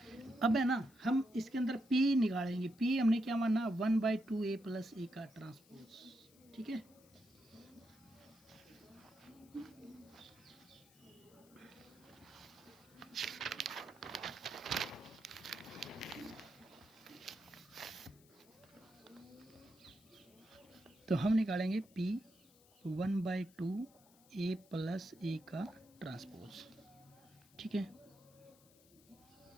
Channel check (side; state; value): left; noise; hiss, 27 dB below the sound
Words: अब है ना हम इसके अंदर p निकालेंगे। p हमने क्या माना, 1/2a + a का ट्रांसपोज, ठीक है। तो हम निकालेंगे p 1/2a + a का ट्रांसपोज, ठीक है।